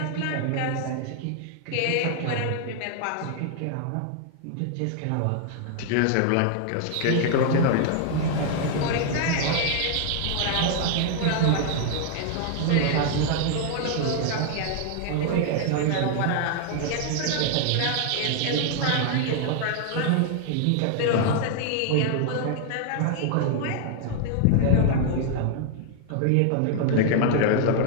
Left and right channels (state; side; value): different; both; correlation 0.00